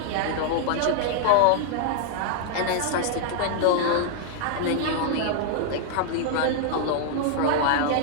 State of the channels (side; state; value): both; different; correlation 0.00